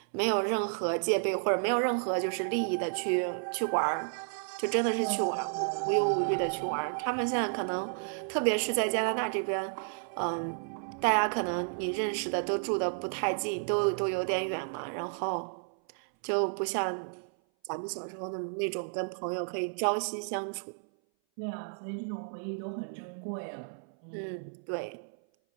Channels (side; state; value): left; silent; 57 dB below the other